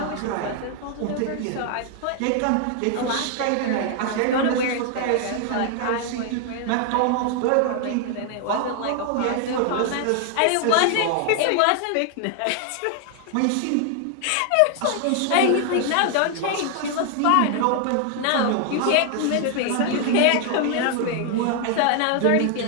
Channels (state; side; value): different; both; correlation 0.00